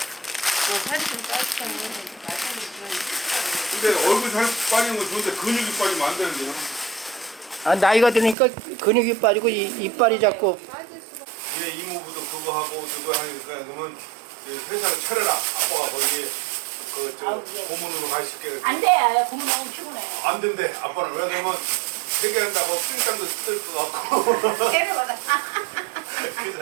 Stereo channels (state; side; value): drops out; left; at 8.3 s